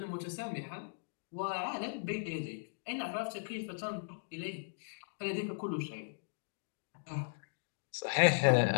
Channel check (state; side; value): silent; right; digital silence